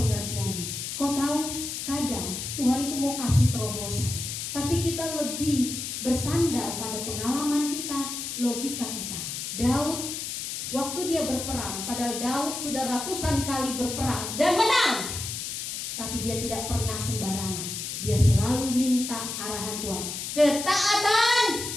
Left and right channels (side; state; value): left; noise; hiss, 5 dB below the sound